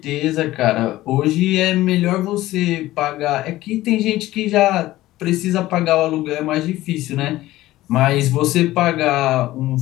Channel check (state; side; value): quieter; right; 16.3 dB